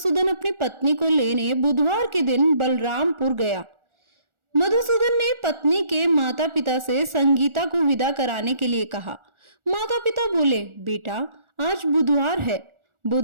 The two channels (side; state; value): left; late; 1.4 ms